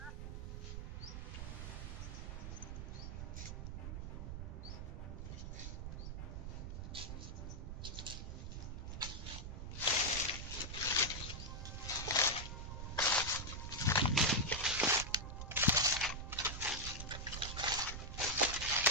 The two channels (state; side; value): noise; right; rumble, 6 dB below the sound